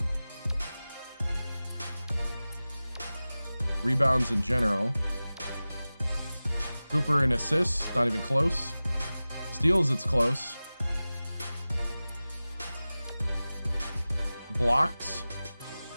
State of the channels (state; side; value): inverted; both; correlation -0.97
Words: Rebounds in general. Cooper in assists, not even close. Steals, it's close. Blocks.